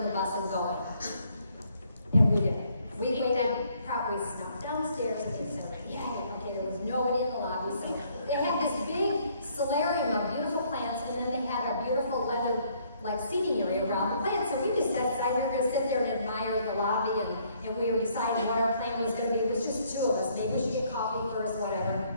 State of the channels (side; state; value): both; inverted; correlation -0.66